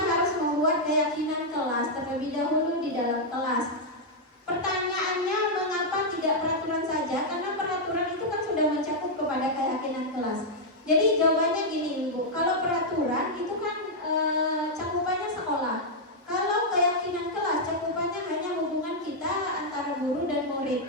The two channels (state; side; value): normal; both; correlation -0.04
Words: membuat keyakinan kelas terlebih dahulu di dalam kelas. Pertanyaannya, mengapa tidak peraturan saja? Karena peraturan itu kan sudah mencakup kepada keyakinan kelas. Jadi jawabannya gini Ibu, kalau peraturan itu kan cakupannya sekolah. Kalau keyakinan kelas cakupannya hanya hubungan kita antara guru dan